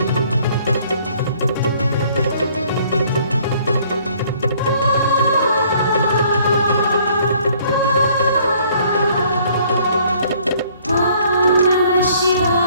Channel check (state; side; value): inverted; both; correlation -0.60